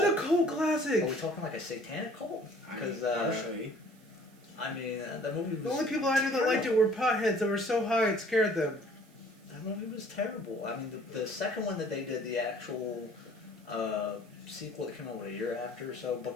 a cult classic? Are we talking like a satanic cult? Because partially. I mean, the movie was... The only people I knew that liked it were potheads that were so high it scared them. That movie was terrible. I mean, the second one that they did, the actual sequel that came out a year after or so,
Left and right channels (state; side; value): noise; right; hiss, 30 dB below the sound